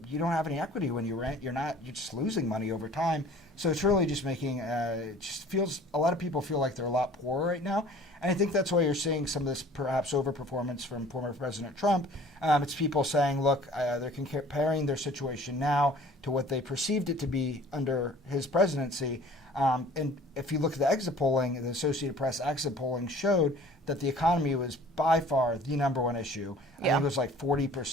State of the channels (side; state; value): both; normal; correlation 0.49